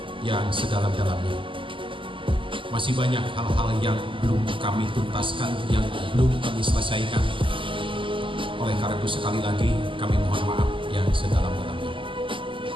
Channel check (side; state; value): left; late; 0.25 ms